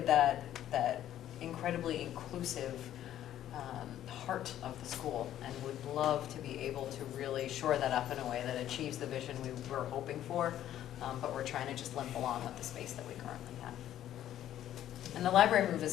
that incredibly inclusive heart of the school, and would love to be able to really shore that up in a way that achieves the vision we were hoping for. But we're trying to just limp along with the space that we currently have. And the library move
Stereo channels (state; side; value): quieter; right; 11.9 dB